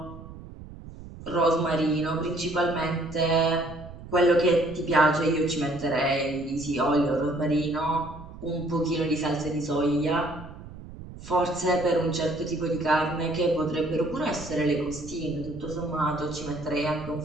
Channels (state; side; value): noise; right; rumble, 15 dB below the sound